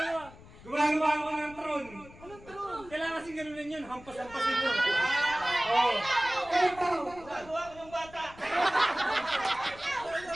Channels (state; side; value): noise; left; rumble, 20 dB below the sound